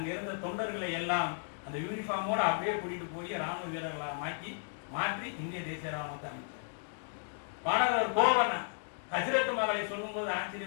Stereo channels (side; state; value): right; silent; digital silence